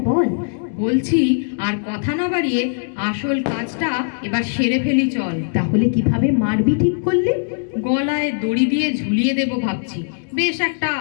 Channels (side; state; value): right; silent; digital silence